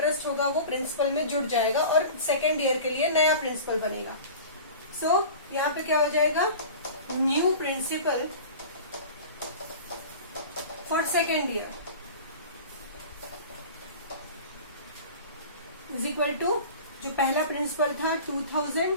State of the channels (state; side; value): inverted; both; correlation -0.38